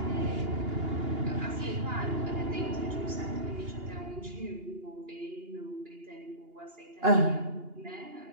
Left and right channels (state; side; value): late; left; 2.8 ms